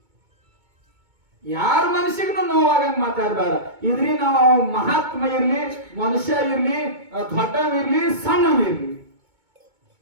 ಯಾರ ಮನುಷ್ಯಗೂ ನೋವಾಗಂಗ್ ಮಾತಾಡಬೇಡ. ಇದ್ರಿ ನಾವು ಮಹಾತ್ಮ ಇರ್ಲಿ, ಮನುಷ್ಯ ಇರ್ಲಿ, ದೊಡ್ಡವಿರ್ಲಿ, ಸಣ್ಣವಿರ್ಲಿ,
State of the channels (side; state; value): left; late; 2.2 ms